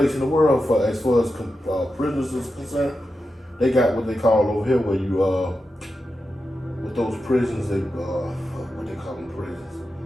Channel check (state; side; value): normal; both; correlation 0.90